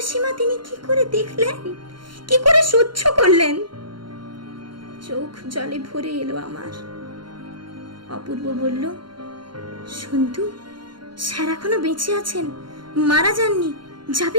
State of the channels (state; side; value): late; left; 0.72 ms